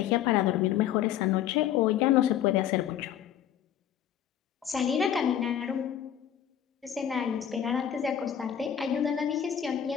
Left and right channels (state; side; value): quieter; right; 10.0 dB